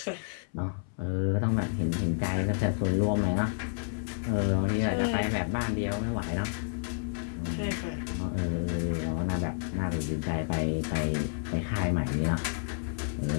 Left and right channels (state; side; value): silent; right; 58 dB below the other